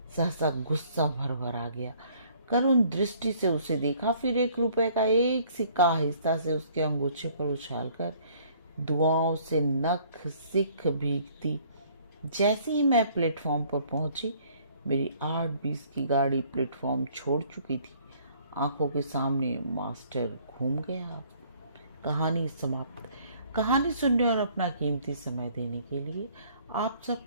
सहसा गुस्सा भर भर आ गया। करुण दृष्टि से उसे देखा, फिर 1 रुपए का एक सिक्का आहिस्ता से उसके अंगूछे पर उछालकर दुआओं से नख सिख भीगती। जैसे ही मैं प्लेटफॉर्म पर पहुंची, मेरी 8:20 की गाड़ी प्लेटफॉर्म छोड़ चुकी थी। आंखों के सामने मास्टर घूम गया। कहानी समाप्त। कहानी सुनने और अपना कीमती समय देने के लिए आप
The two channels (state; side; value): inverted; both; correlation -0.59